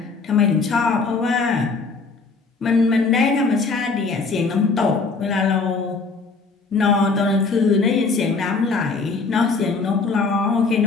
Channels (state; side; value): quieter; right; 4.3 dB